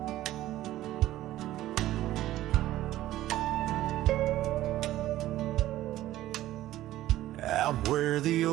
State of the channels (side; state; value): left; quieter; 14.6 dB